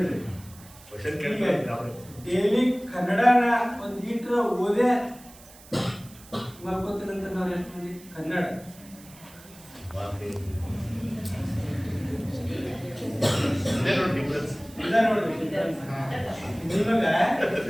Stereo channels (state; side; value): noise; right; hiss, 21 dB below the sound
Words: ಡೈಲಿ ಕನ್ನಡನ ಒಂದು ಲೀಟ್ರ್ ಓದೇ ಮಲ್ಕೋತೀನಂತ ನಾವು ಎಷ್ಟು ಮಂದಿ? ಕನ್ನಡ ನಿಮಗ